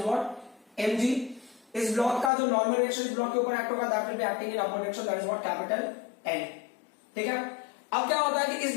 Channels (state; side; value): drops out; right; at 2.3 s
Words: what mg. इस ब्लॉक का जो नॉर्मल डायरेक्शन इस ब्लॉक के ऊपर एक्ट होगा that will be acting in upward direction, that is what capital N, ठीक है. अब क्या होता है कि इस